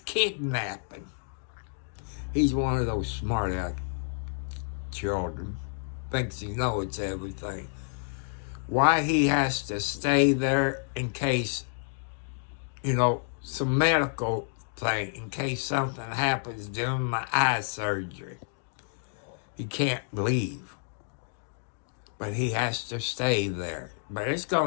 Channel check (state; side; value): silent; right; digital silence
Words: He's one of those smart children. Thinks he knows everything. Why he has to stay there in case, some medical thing, in case something happens during my eye surgery. He can't leave. But he has to stay there. But it's